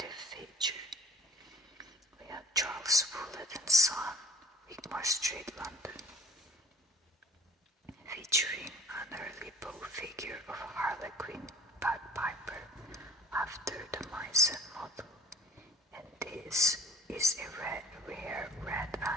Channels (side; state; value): both; normal; correlation 0.50